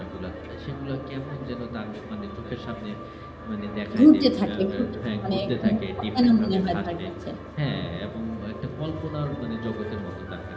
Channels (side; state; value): both; identical; correlation 1.00